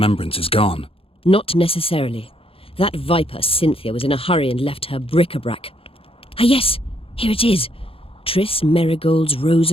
is gone. Not necessarily. That viper, Cynthia, was in a hurry and left her bric-a-brac. Ah yes, here it is. Triss Merigold's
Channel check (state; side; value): late; right; 0.27 ms